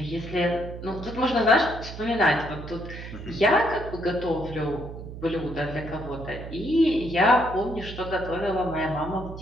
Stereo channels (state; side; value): noise; right; hum, 11 dB below the sound